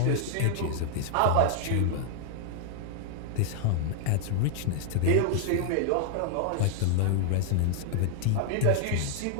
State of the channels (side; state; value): both; different; correlation 0.00